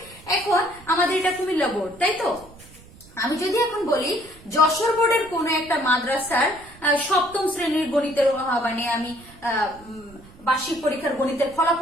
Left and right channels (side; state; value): right; noise; rumble, 22 dB below the sound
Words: এখন আমাদের এটা কুমিল্লা বোর্ড, তাই তো। আমি যদি এখন বলি যশোর বোর্ডের কোন একটা মাদ্রাসার সপ্তম শ্রেণীর গণিতের মানে আমি বার্ষিক পরীক্ষার গণিতের